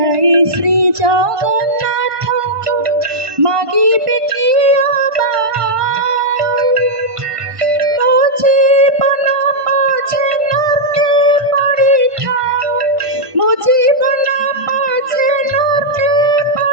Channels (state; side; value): late; left; 1.2 ms